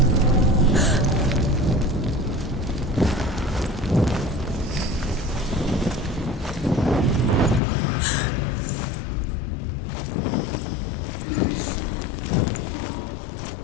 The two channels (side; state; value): right; drops out; at 7.6 s